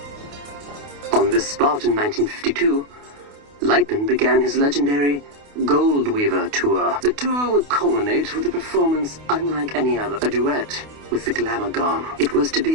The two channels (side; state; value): left; late; 28 ms